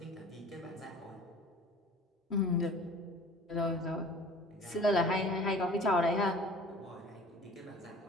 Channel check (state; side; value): normal; both; correlation 0.45